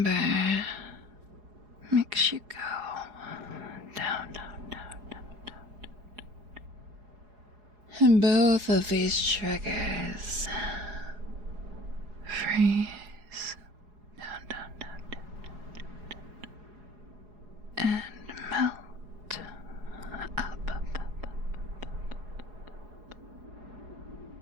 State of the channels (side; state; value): left; late; 4.8 ms